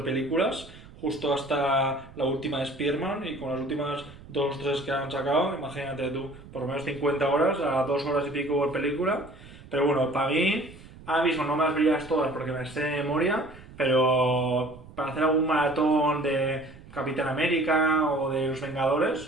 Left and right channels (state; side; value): noise; right; rumble, 19 dB below the sound